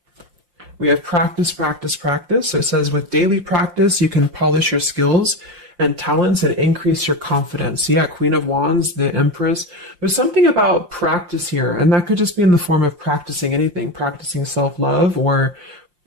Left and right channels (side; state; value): left; late; 5.7 ms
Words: We have practice, practice, practice. So it says with daily practice, you can polish your skills and talents and increase your confidence. So yeah, Queen of Wands, the Empress. There's something about practice here. And that could just be in the form of practicing anything. Practicing self-love or